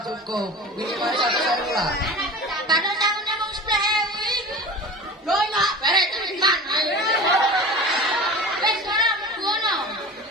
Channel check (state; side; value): normal; both; correlation 0.34